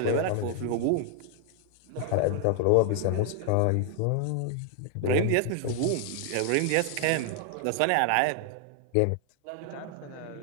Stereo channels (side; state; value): both; different; correlation 0.00